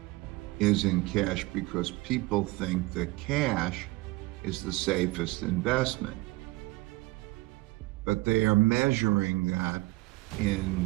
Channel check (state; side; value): quieter; left; 21.4 dB